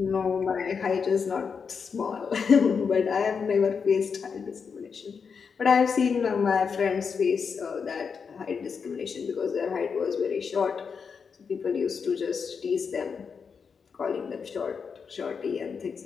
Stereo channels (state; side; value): quieter; right; 5.9 dB